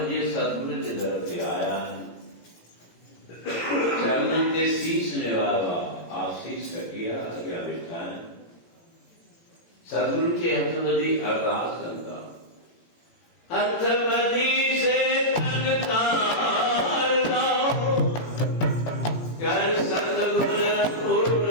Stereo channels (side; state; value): right; late; 18 ms